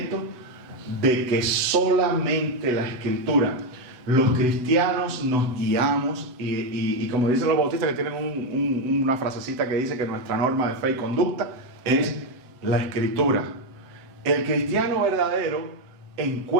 de que solamente la Escritura, los cristianos nos guiamos y como dicen los bautistas que tienen una frasecita que dice que nuestra norma de fe y conducta es la Escritura. El cristiano verdadero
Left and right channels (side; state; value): left; late; 7.9 ms